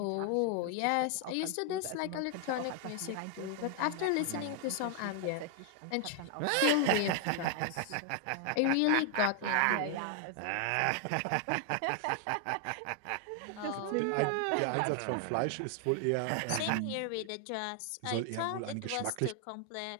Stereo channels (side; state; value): both; different; correlation 0.00